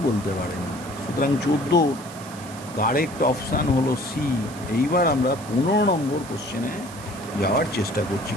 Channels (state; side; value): noise; right; hiss, 17 dB below the sound